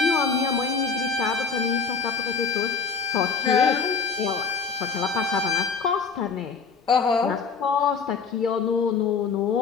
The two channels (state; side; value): quieter; right; 5.3 dB